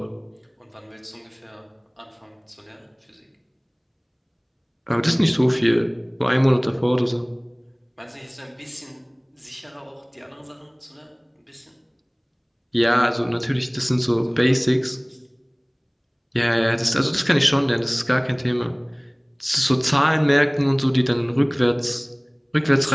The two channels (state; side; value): identical; both; correlation 1.00